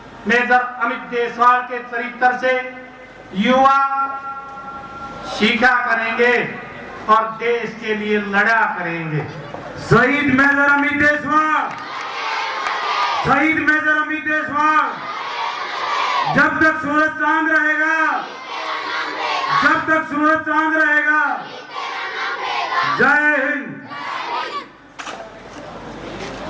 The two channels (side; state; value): both; identical; correlation 1.00